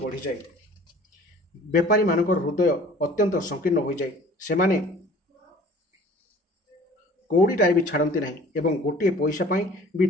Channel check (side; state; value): both; normal; correlation 0.49